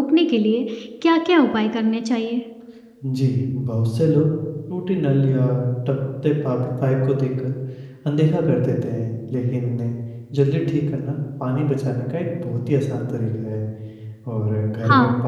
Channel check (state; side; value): identical; both; correlation 1.00